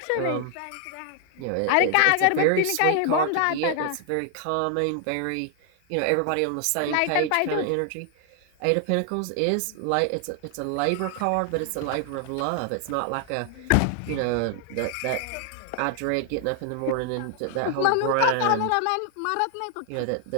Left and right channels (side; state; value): both; different; correlation 0.00